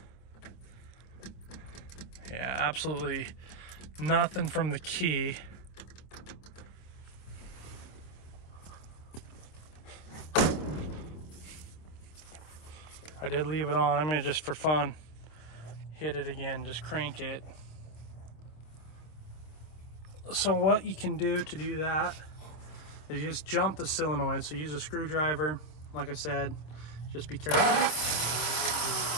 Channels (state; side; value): late; right; 26 ms